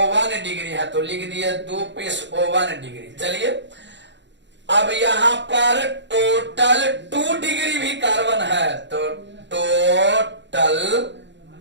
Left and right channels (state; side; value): late; left; 0.52 ms